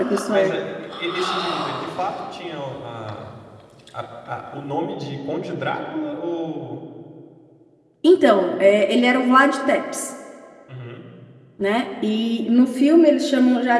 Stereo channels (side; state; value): both; identical; correlation 1.00